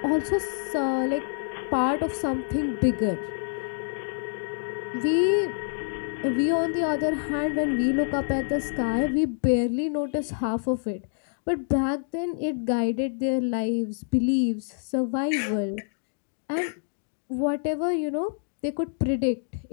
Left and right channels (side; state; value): right; silent; digital silence